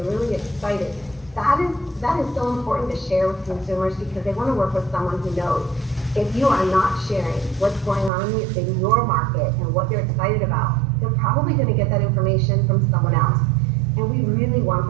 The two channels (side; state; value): left; drops out; at 8.1 s